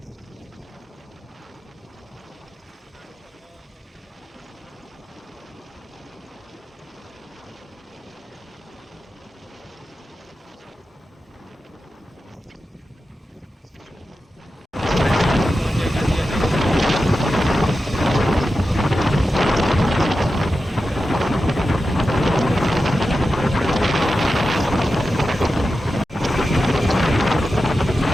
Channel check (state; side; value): normal; both; correlation 0.92